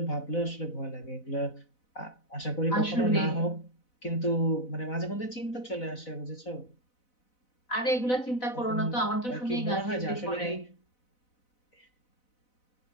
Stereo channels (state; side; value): late; right; 4.0 ms